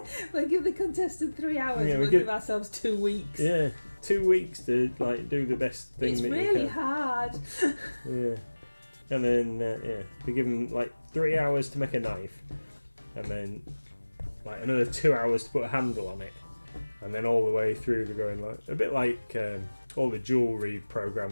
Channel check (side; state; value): both; inverted; correlation -1.00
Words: we'll give the contestant 3 hours. Yeah, we'll give ourselves 2 weeks. Yeah, 2 weeks to do the best thing it's that you can. It's really hard. Yeah. And then, they give them 3 hours to make a knife. And then another 2 hours to put a handle on it. And then all the way through they're going a bit like all the jewellery